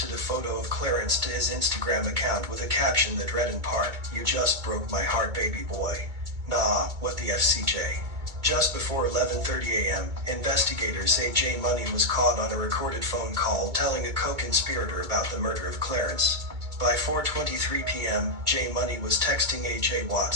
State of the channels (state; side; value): late; left; 2.2 ms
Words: a photo of Clarence to his Instagram account with a caption that read in part, "You just broke my heart, baby boy. Nah, what the FCJ?" Just before 11:30 a.m., investigators say J Money was caught on a recorded phone call telling a co-conspirator about the murder of Clarence. By 4:23 p.m., J Money was texting A.J.